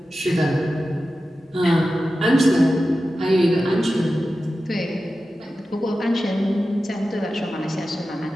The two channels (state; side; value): normal; both; correlation 0.93